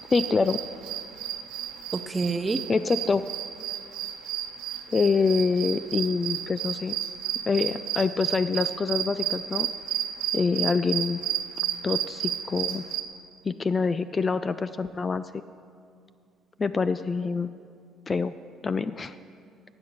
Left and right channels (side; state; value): both; normal; correlation 0.77